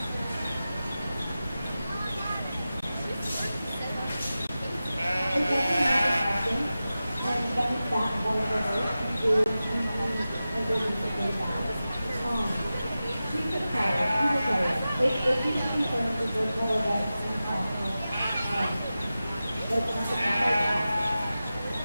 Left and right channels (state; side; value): inverted; both; correlation -0.94